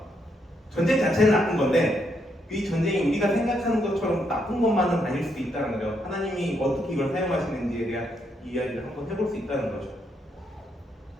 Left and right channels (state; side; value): normal; both; correlation 0.77